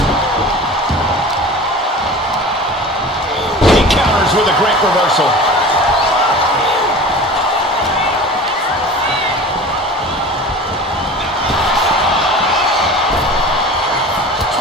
He counters with a great reversal.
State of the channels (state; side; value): normal; both; correlation 0.37